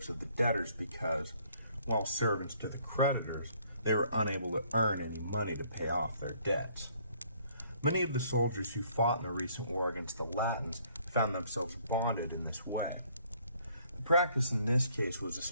of the debtors because, while servants to the creditors, they were unable to earn any money to pay off their debts. Many of the soldiers who fought in the recent war against the Latins found themselves bonded in this way. The practice in this case was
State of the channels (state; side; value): inverted; both; correlation -0.63